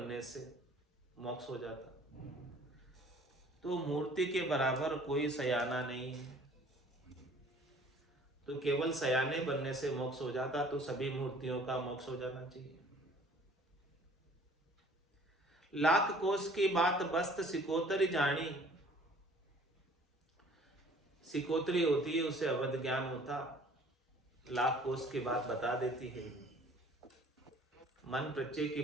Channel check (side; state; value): both; normal; correlation 0.53